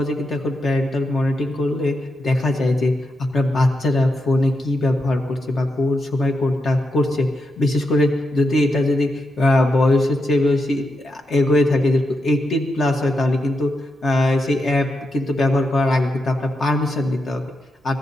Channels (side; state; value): both; normal; correlation 0.85